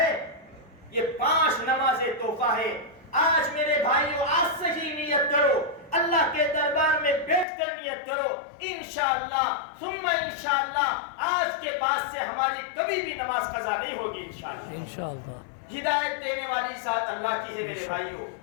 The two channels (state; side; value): drops out; right; at 7.5 s